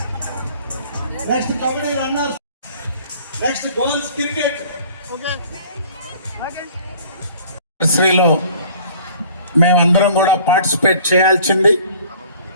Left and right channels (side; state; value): both; inverted; correlation -0.51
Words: next kabaddi runners, next goals cricket. శ్రీలో మేమందరం కూడా పార్టిసిపేట్ చేయాల్సింది,